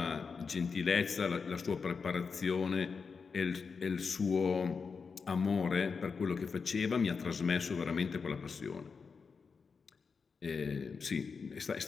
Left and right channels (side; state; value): right; quieter; 5.3 dB